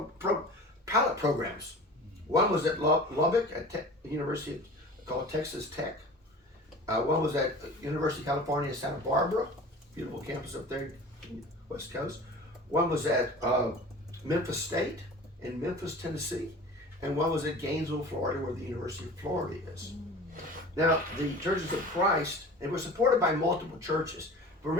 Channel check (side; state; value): both; normal; correlation 0.39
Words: programs. One was at Lubbock at University called Texas Tech. One was at University of California, Santa Barbara, beautiful campus up there, West Coast. One was at Memphis State in Memphis, Tennessee, and one was at Gainesville, Florida, where the University of Florida is. Now, the Churches of Christ, they were supported by multiple churches. But